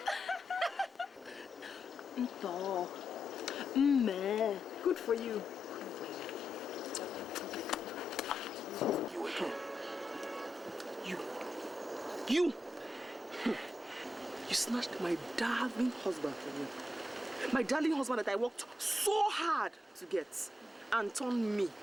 Good for you. You snatched my darling husband from me. My darling husband that I worked so hard to get and turned me,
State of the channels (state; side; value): normal; both; correlation 0.86